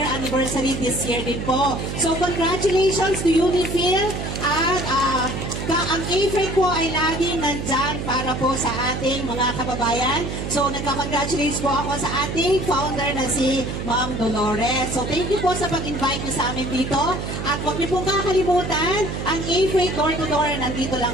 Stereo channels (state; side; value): noise; right; hum, 5 dB below the sound